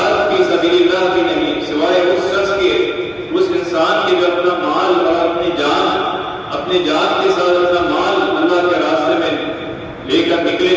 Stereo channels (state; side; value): identical; both; correlation 1.00